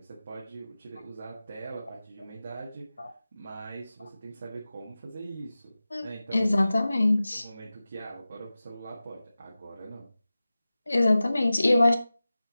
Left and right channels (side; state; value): both; inverted; correlation -0.96